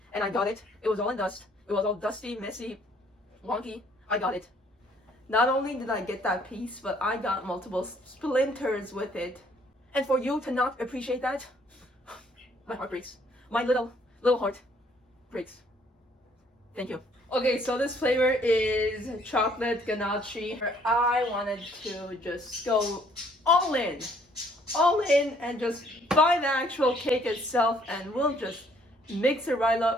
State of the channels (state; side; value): normal; both; correlation 0.63